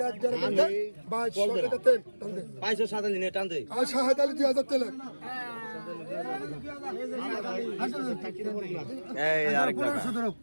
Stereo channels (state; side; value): inverted; both; correlation -1.00